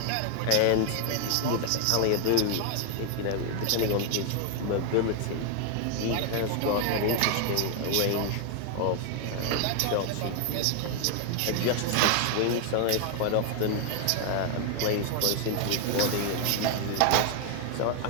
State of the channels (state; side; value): different; both; correlation 0.00